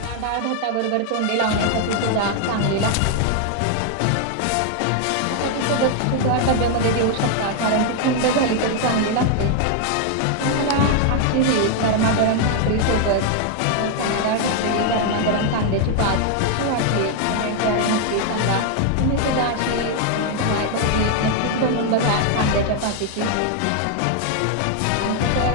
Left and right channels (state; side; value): different; both; correlation 0.00